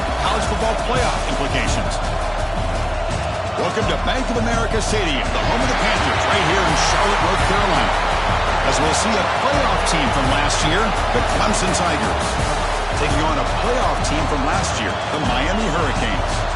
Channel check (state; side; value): identical; both; correlation 1.00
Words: college football playoff implications. Welcome to Bank of America Stadium, the home of the Panthers, right here in Charlotte, North Carolina. As we'll see a playoff team from last year, the Clemson Tigers, taking on a playoff team from last year, the Miami Hurricanes.